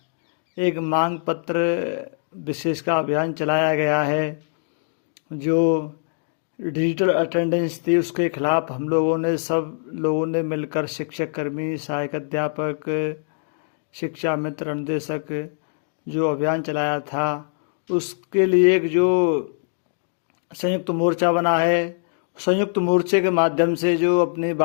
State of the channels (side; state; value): right; silent; digital silence